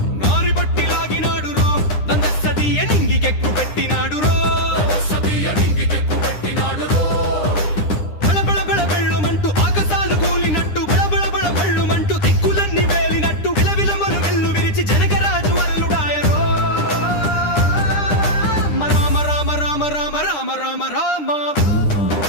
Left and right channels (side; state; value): right; late; 9.9 ms